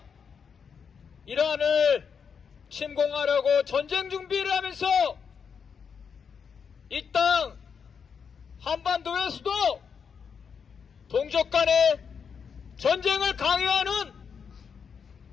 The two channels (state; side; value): quieter; right; 6.5 dB